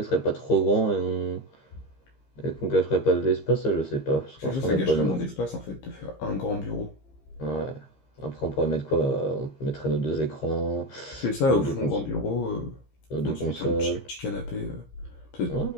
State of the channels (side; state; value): right; late; 15 ms